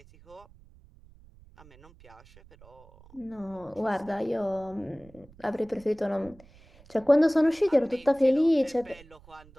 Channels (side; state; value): right; noise; rumble, 25 dB below the sound